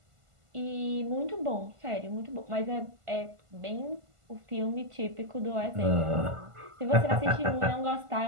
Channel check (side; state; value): left; late; 1.5 ms